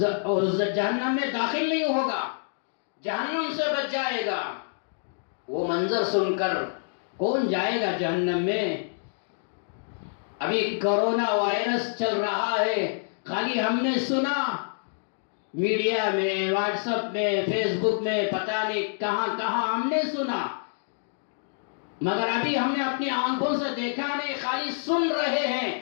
داخل نہیں ہوگا، جہنم سے بچ جائے گا۔ وہ منظر سن کر کون جائے گا جہنم میں؟ ابھی کرونا وائرس چل رہا ہے، خالی ہم نے سنا میڈیا میں، واٹس ایپ میں، فیس بک میں، پتہ نہیں کہاں کہاں ہم نے سنا، مگر ابھی ہم نے اپنی آنکھوں سے دیکھا نہیں، خالی سن رہے ہیں۔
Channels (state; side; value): silent; right; digital silence